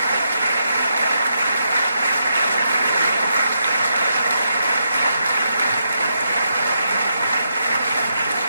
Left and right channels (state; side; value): inverted; both; correlation -0.81